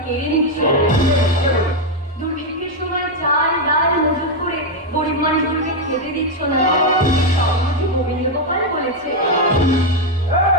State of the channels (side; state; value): both; normal; correlation 0.03